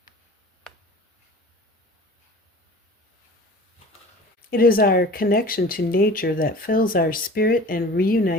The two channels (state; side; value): normal; both; correlation 0.41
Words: It is our connection to nature that fills our spirit and